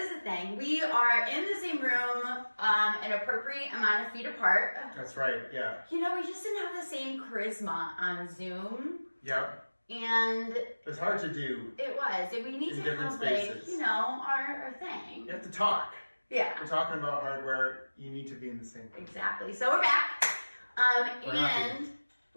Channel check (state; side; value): inverted; both; correlation -1.00